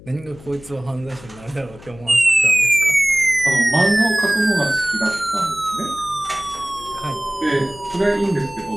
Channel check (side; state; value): left; noise; hum, 20 dB below the sound